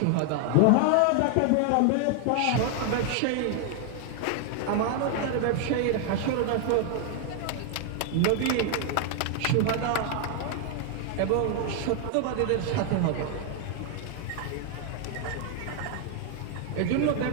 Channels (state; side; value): different; both; correlation 0.00